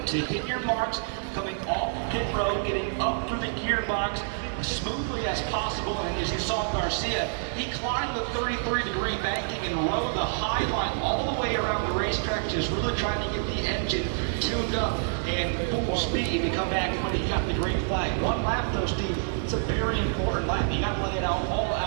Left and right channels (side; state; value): left; silent; digital silence